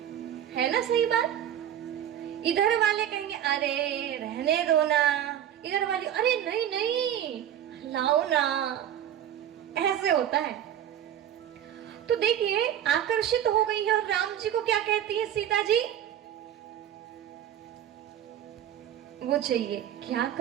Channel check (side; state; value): left; quieter; 10.5 dB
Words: ना? सही बात। इधर वाले कहेंगे अरे रहने दो ना, इधर वाले अरे नहीं नहीं लाओ ना, ऐसे होता है। तो देखिए, आकर्षित हो गई है और राम जी को क्या कहती है सीता जी? वो चाहिए। क्या